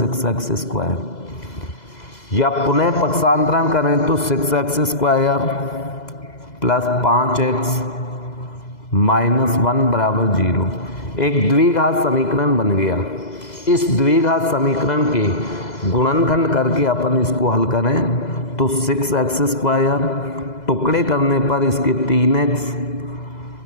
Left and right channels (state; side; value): late; right; 2.0 ms